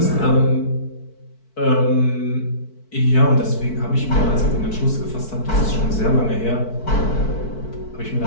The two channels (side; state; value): right; late; 4.5 ms